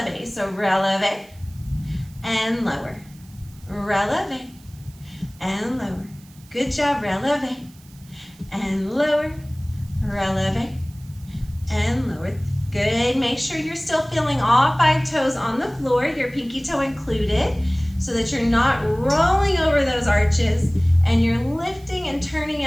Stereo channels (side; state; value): right; noise; hiss, 26 dB below the sound